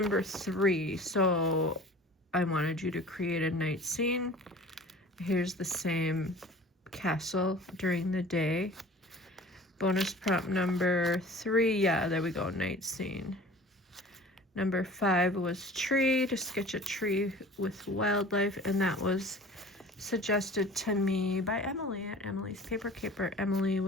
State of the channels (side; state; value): both; normal; correlation 0.43